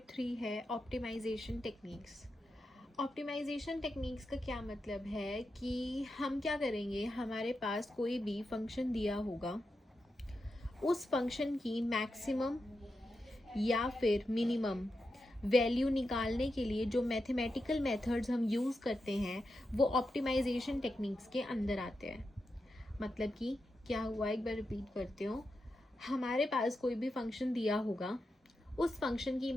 3 है optimisation techniques. Optimisation techniques का क्या मतलब है कि हम क्या करेंगे, हमारे पास कोई भी फंक्शन दिया होगा, उस फंक्शन की मैक्सिमम या फिर मिनिमम वैल्यू निकालने के लिए जो मैथमेटिकल मेथड्स हम यूज़ करते हैं वो ऑप्टिमाइजेशन टेक्निक्स के अंदर आते हैं। मतलब कि क्या हुआ, एक बार रिपीट करते हो। हमारे पास कोई भी फंक्शन दिया होगा, उस फंक्शन की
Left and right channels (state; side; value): normal; both; correlation 0.88